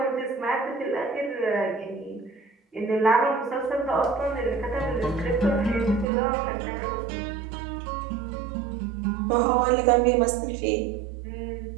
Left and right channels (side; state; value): left; drops out; at 6.1 s